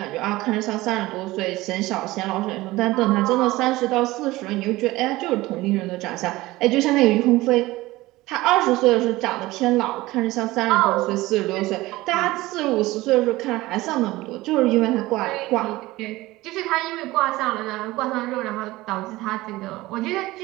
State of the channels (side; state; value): left; quieter; 18.8 dB